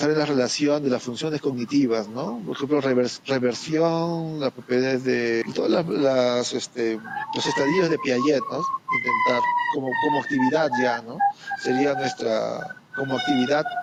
en la relación de las funciones cognitivas, ¿no? Por ejemplo, reversión, las propiedades de todas los estadios de Piaget, ¿no? Intentar como actividad ya, ¿no? Sería como actividad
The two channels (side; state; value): both; identical; correlation 1.00